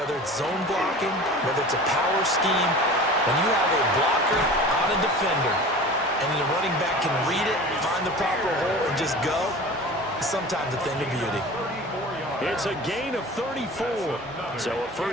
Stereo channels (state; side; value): noise; right; hum, 25 dB below the sound